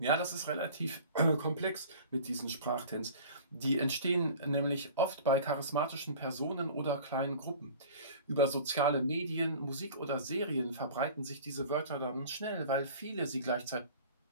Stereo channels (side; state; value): both; inverted; correlation -0.43